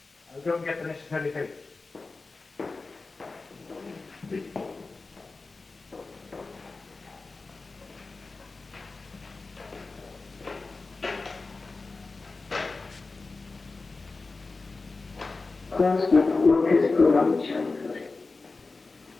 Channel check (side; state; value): right; quieter; 3.8 dB